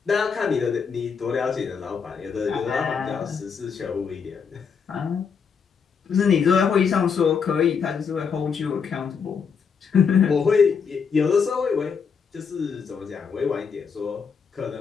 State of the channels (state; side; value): quieter; right; 6.2 dB